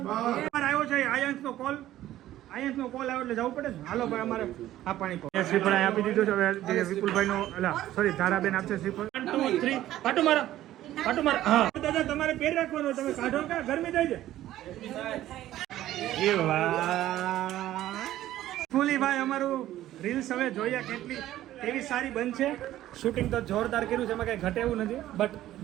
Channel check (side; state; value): left; quieter; 13.8 dB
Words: આવ્યો છે આયન્સનો કોલ. આયન્સનો કોલ આવ્યો એટલે જવું પડે ને. હાલો ભાઈ, અમારે આ પાણી પો શ્રીફળ આપી દીધું છે. હવે વિપુલભાઈનો સોરી ધારાબેન આપશે શ્રીફળ. 1 2 3 પાટો મારો. હા દાદા, તમારે પેર રાખવાનો. તમે કાઢો કે ગરમી થાય છે? એ વાહ, ફૂલી ભાઈ, અમારું રીલ્સ હવે જોઈએ કેટલી કેવી સારી બનશે. શૂટિંગ તો જોરદાર કર્યું છે, એમાં કઈ ઘટે એવું નથી. બટ